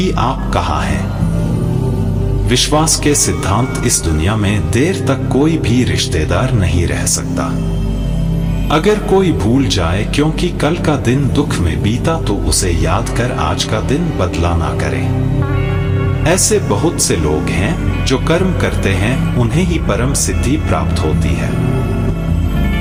आप कहाँ हैं। विश्वास के सिद्धांत, इस दुनिया में देर तक कोई भी रिश्तेदार नहीं रह सकता। अगर कोई भूल जाए क्योंकि कल का दिन दुख में बीता, तो उसे याद कर आज का दिन बदला ना करें। ऐसे बहुत से लोग हैं जो कर्म करते हैं, उन्हें ही परम सिद्धि प्राप्त होती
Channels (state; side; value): identical; both; correlation 1.00